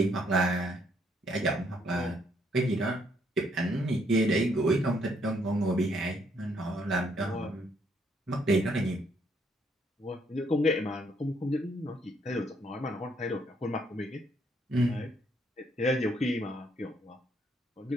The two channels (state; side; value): normal; both; correlation 0.70